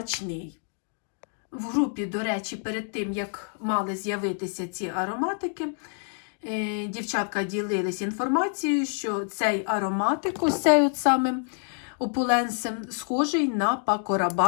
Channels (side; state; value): right; silent; 56 dB below the other